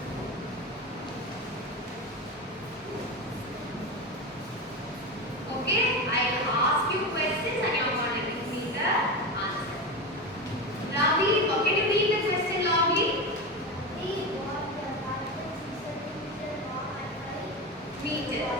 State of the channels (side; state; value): both; normal; correlation 0.20